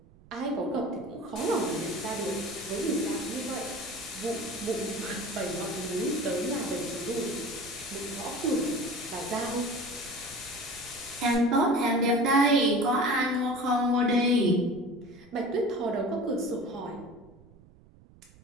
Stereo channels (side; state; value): right; noise; rumble, 25 dB below the sound